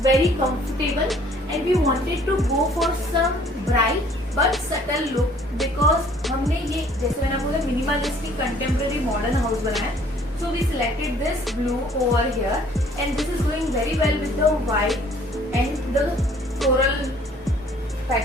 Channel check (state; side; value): normal; both; correlation 0.57